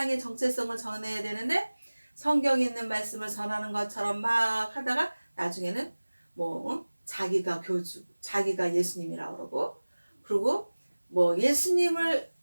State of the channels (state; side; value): inverted; both; correlation -1.00